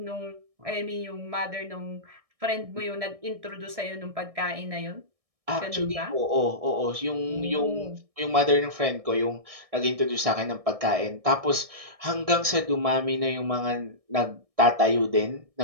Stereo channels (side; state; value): left; late; 1.6 ms